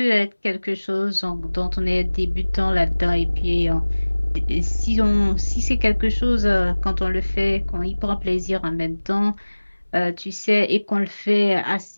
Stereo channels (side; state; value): both; inverted; correlation -1.00